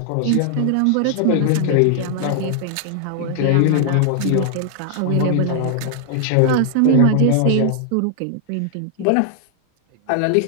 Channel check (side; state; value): both; different; correlation 0.00